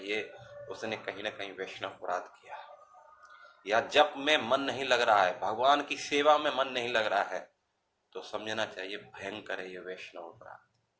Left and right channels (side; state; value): both; identical; correlation 1.00